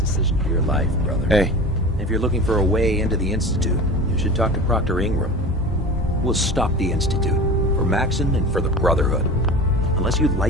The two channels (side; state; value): both; normal; correlation 0.33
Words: Your life, brother. Hey. If you're looking for a way into the Institute, you should talk to Proctor Ingram. We'll stop the Institute, for Maxon and for the Brotherhood. Unless you